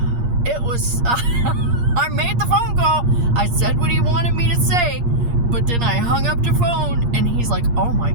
it was, I made the phone call. I said what he wanted me to say. But then I hung up the phone and he's like, oh my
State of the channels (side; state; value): left; late; 8.5 ms